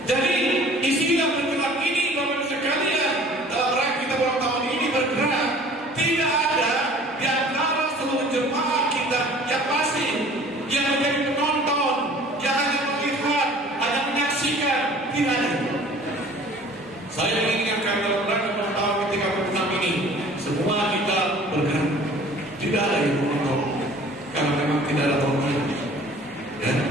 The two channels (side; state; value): both; normal; correlation 0.49